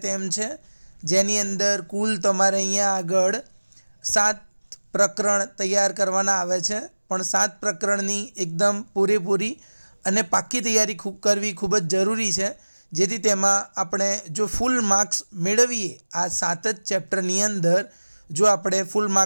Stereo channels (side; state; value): both; inverted; correlation -1.00